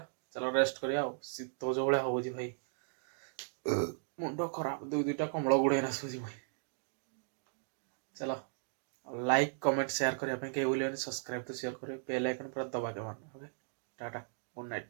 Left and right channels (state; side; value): silent; left; digital silence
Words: चलो रेस्ट करिया शीत जो भाया हो भाई मुंड खराब दुईटा कमल गुड़े आसूसी भाई चलो लाइक कमेंट शेयर करने कहीं भूल सब्सक्राइब तो शेयर करें बेल आइकन पूरा दबा के मारना ओके टाटा गुड